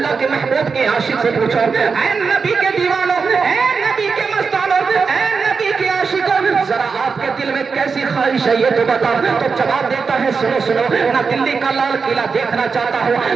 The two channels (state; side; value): quieter; left; 5.2 dB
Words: کے محبوب کے عاشق سے پوچھو، اے نبی کے دیوانوں، اے نبی کے مستانوں، اے نبی کے عاشقوں، ذرا آپ کے دل میں کیسی خواہش ہے یہ تو بتاؤ۔ تو جواب دیتا ہے سنو سنو، نہ دلی کا لال قلعہ دیکھنا چاہتا ہوں،